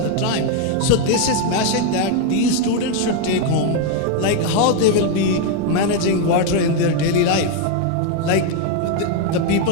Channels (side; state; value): both; different; correlation 0.01